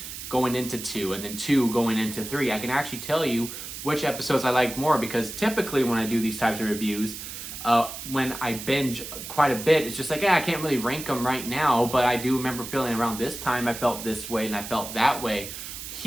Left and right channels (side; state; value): right; noise; hiss, 9 dB below the sound